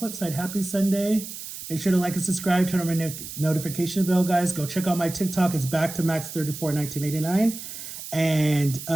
side. Happy Sunday. Make sure to like and subscribe. Turn on my notification bell, guys. Go check out my TikTok. It's back to Max341989. And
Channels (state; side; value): noise; right; hiss, 10 dB below the sound